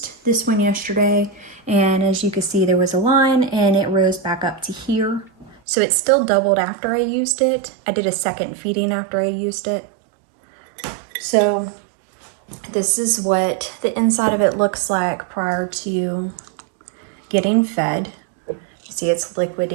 this one yesterday, and as you can see, there was a line and it rose back up to here. So it still doubled after I used it. I did a second feeding after I used it. So this is what the inside of it looks like prior to getting fed. You see it's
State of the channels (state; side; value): drops out; left; at 5.6 s